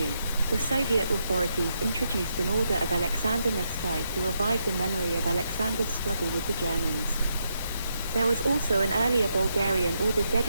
the Soviet authorities introduced an order of Alexander Nevsky to revive the memory of Alexander's struggle with the Germans. There was also an earlier Bulgarian order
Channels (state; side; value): inverted; both; correlation -0.81